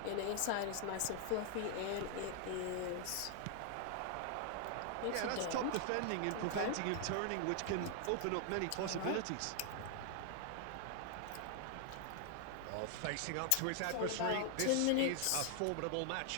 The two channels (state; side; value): different; both; correlation 0.00